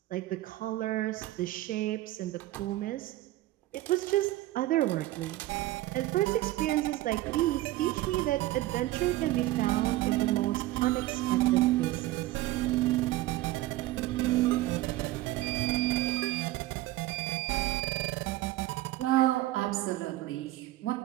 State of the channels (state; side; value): quieter; left; 16.6 dB